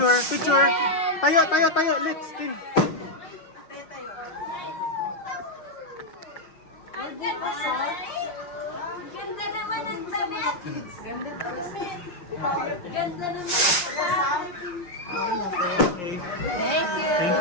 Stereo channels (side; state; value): right; late; 5.6 ms